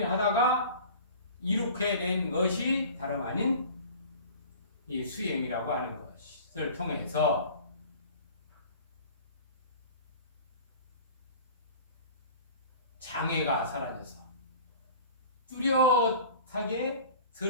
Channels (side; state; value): both; inverted; correlation -0.41